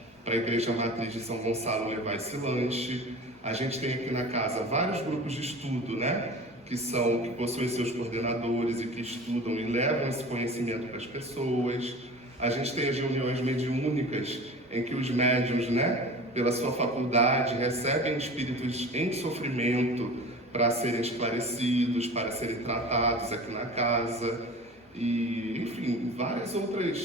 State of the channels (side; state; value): both; normal; correlation 0.37